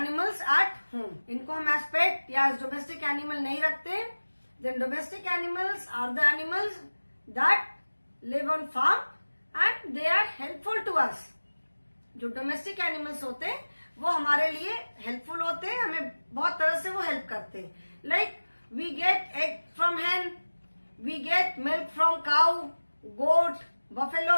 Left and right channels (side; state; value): both; inverted; correlation -1.00